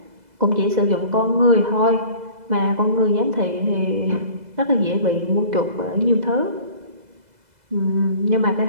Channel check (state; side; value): late; left; 2.0 ms